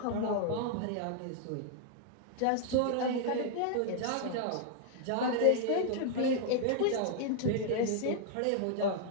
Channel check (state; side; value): different; both; correlation 0.00